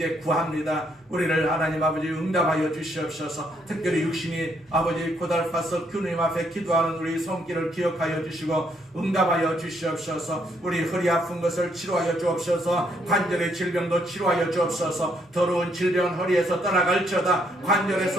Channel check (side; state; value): both; normal; correlation 0.72